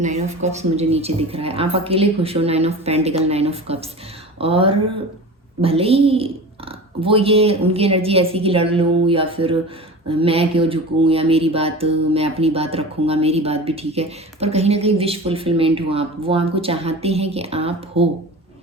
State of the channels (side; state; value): both; normal; correlation 0.33